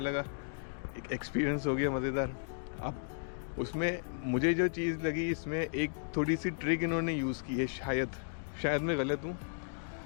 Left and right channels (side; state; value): right; silent; digital silence